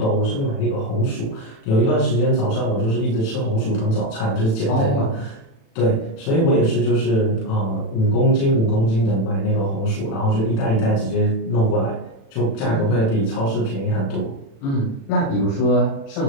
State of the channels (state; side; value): late; right; 36 ms